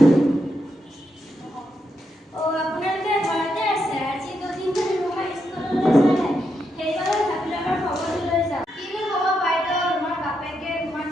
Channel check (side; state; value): both; normal; correlation 0.82